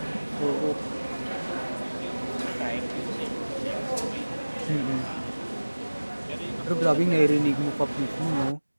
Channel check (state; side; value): inverted; both; correlation -1.00